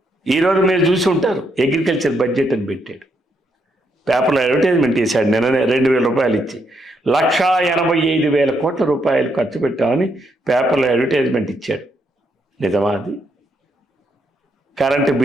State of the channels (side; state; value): both; normal; correlation 0.77